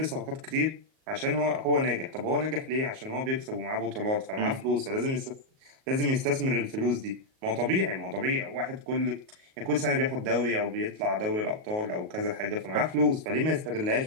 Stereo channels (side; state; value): left; late; 38 ms